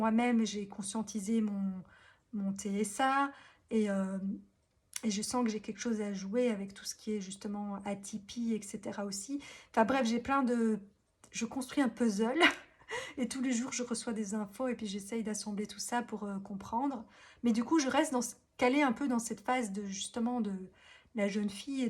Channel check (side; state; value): both; identical; correlation 1.00